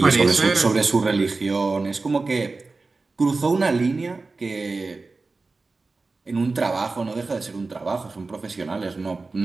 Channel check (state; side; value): quieter; left; 3.8 dB